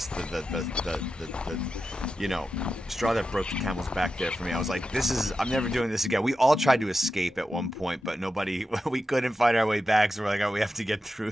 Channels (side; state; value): both; normal; correlation 0.90